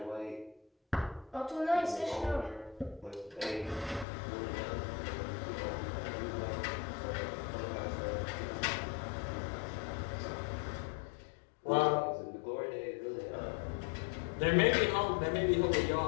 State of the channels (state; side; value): drops out; right; at 4.0 s